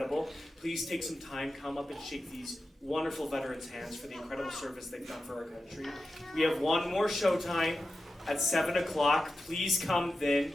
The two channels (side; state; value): both; normal; correlation 0.91